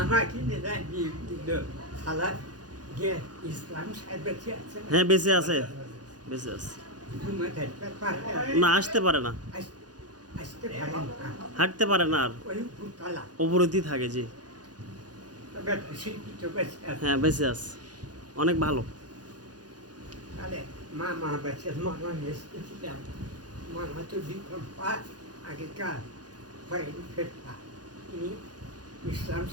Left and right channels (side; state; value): left; late; 0.69 ms